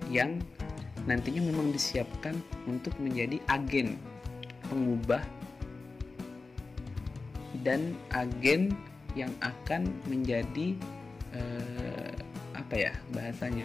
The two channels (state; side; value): quieter; right; 3.8 dB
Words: yang nantinya memang disiapkan untuk menjadi agen pengubah dan agen yang akan menjadi